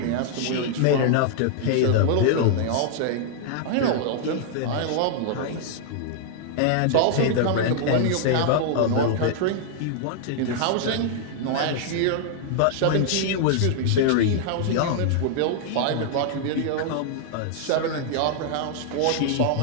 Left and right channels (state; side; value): different; both; correlation -0.01